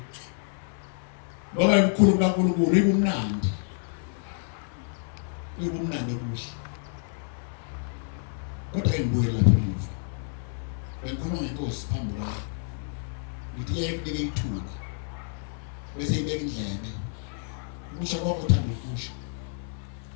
Ngoba imkhulu kaNkulunkulu ibumnandi. Ibumnandi okuhle. Kodwa imbuye lapha emuva. Bengikhuluma ngenkosi phambi kwami. Ngithi yayibeke ithuba. Bese ibeka indlebe. Ukusho konke uthanda ukusho.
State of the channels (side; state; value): right; silent; 59 dB below the other